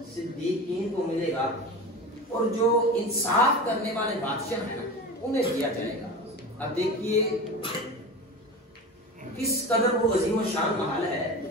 صدیقین کو ملے گا اور جو انصاف کرنے والے بادشاہ ہیں نا انہیں دیا جائے گا۔ اب دیکھیے کس قدر وہ عظیم و شان محل ہے،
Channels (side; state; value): both; normal; correlation 0.30